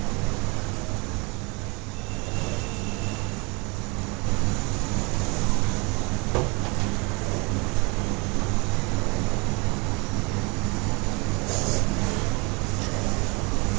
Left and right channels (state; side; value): quieter; left; 28.9 dB